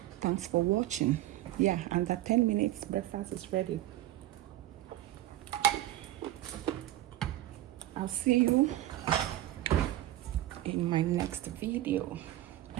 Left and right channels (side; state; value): left; quieter; 14.7 dB